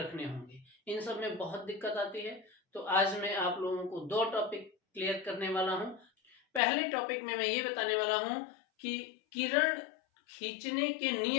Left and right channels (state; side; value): drops out; right; at 6.6 s